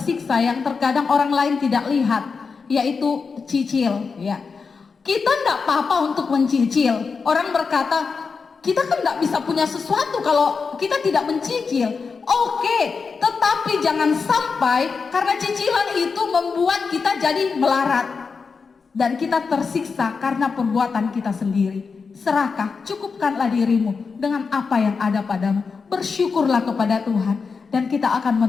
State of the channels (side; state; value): right; quieter; 5.1 dB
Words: yang terkadang orang lain tidak lihat, yaitu cicil ya. Kita tidak apa-apa untuk mencicil. Orang berkata, kita kan tidak bisa punya sesuatu kalau kita tidak mencicil. Oke, tetapi jangan sampai karena cicilan itu membuat kita jadi melarat dan kita tersiksa karena perbuatan kita sendiri. Serakah, cukupkanlah dirimu dengan apa yang ada padamu. Bersyukurlah kepada Tuhan dan kita akan